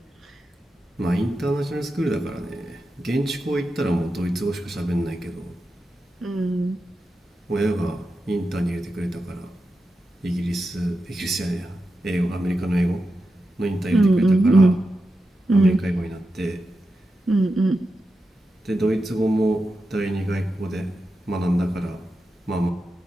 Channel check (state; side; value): normal; both; correlation 0.90